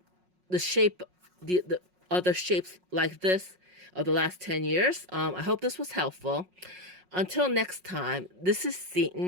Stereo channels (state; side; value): late; left; 5.5 ms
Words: shape, the other shapes like this of the last 10 years. I hope this was helpful. Until next time, this is